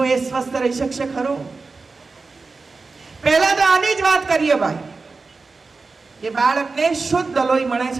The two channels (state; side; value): quieter; left; 4.1 dB